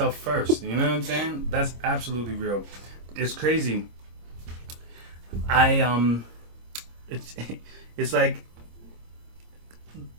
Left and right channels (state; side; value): late; left; 26 ms